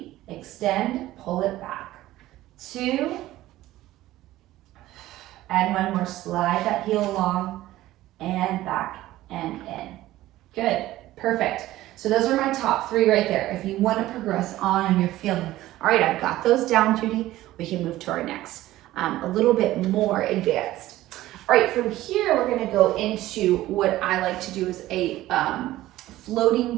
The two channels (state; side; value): quieter; left; 15.7 dB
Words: extend, pull it back. 2, and 1 more. Slide that heel along and back and in. Good, perfect. So those are my top 3 right there. If you want to progress on and you're feeling, all right, I've got those down, Judy, we can move to our next, a little bit more advanced. All right, from here, we're gonna go into what I like to do is a